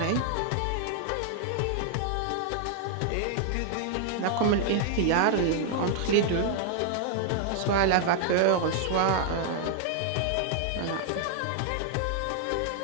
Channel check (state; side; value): different; both; correlation 0.00